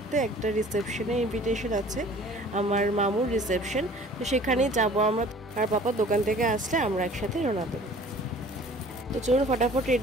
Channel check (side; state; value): both; normal; correlation 0.49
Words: একটা রিসেপশনে। ইনভিটেশন আছে আমার মামুর রিসেপশন, তো সেখানেই যাব আমরা। আর পাপা দোকান থেকে আসলে আমরা একসাথে রওনা দেবো। তো চলুন ফটাফট